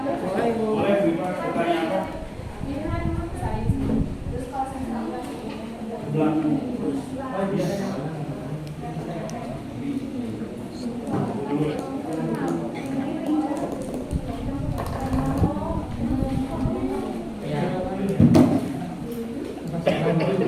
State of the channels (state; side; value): identical; both; correlation 1.00